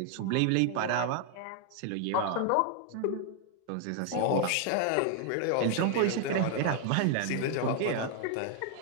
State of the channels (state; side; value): different; both; correlation 0.00